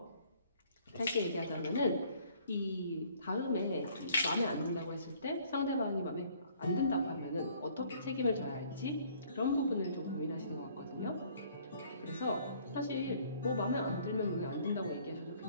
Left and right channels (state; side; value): inverted; both; correlation -0.59